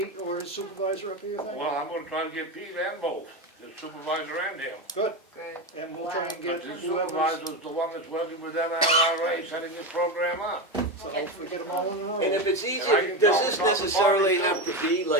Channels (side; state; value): both; normal; correlation 0.16